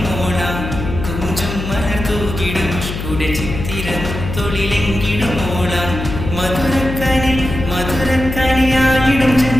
മോള കൊഞ്ചും മലർത്തൂകിടും ഇഷ്കുടെ ചിത്തിരം തൊളിലെങ്കിലും മോള മധുരക്കനി മധുരക്കനിയായിടും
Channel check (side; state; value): left; noise; hum, 6 dB below the sound